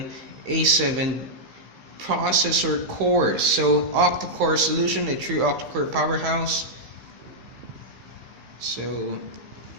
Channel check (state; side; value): late; left; 15 ms